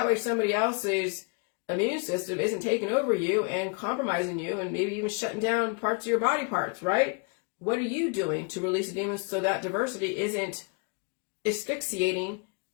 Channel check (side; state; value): right; quieter; 34.1 dB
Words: way somebody else's immune system isn't taking over you and compromising you and maybe even shutting down parts of your body parts, right? What are you doing to release the demons so that diversity isn't asphyxiating